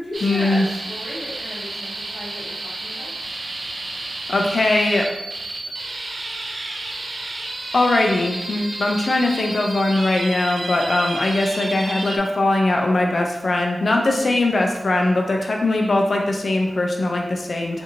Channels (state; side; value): normal; both; correlation 0.94